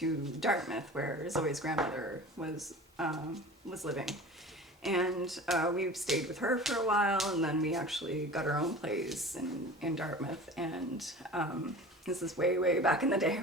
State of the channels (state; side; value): normal; both; correlation 0.38